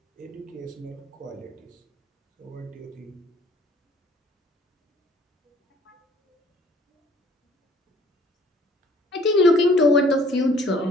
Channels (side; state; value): both; normal; correlation 0.56